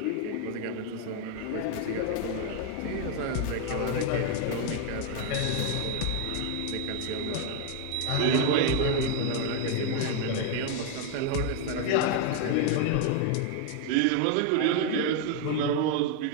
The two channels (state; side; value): different; both; correlation 0.00